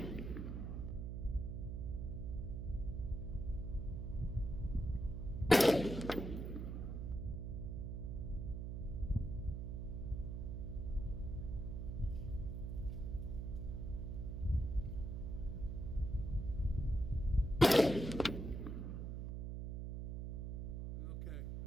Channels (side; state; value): right; noise; hum, 4 dB below the sound